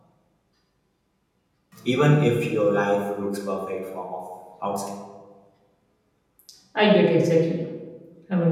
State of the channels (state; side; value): identical; both; correlation 1.00